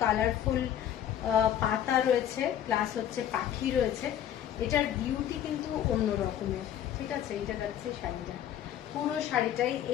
কালারফুল পাতা রয়েছে, প্লাস হচ্ছে পাখি রয়েছে। এটার বিউটি কিন্তু অন্য রকমের, ঠিক আছে। এইটা যাচ্ছে শাড়িটা, পুরো শাড়িটাই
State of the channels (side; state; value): right; quieter; 10.5 dB